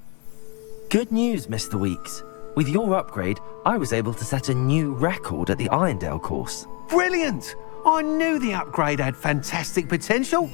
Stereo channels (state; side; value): quieter; right; 32.5 dB